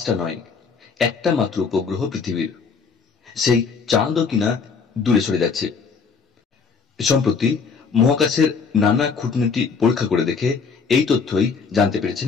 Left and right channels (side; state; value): right; quieter; 5.4 dB